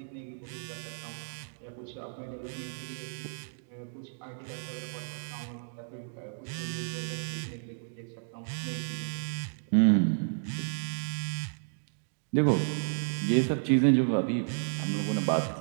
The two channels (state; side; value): silent; left; digital silence